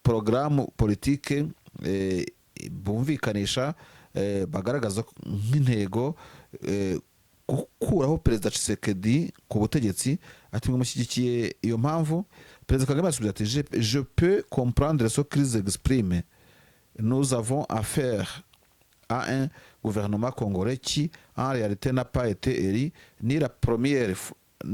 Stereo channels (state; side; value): identical; both; correlation 1.00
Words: programme politique bumvikanisha bagaragaza nk'intego gukuraho Perezida Tshisekedi ku butegetsi. Ati mushyigikiye iyo mpamvu. Perezida Kagame asubiza ati je peux comprendre ce qu'ils expriment. Nous avons affaire à un gouvernement congolais qui en réalité n'a pas été élu ni la première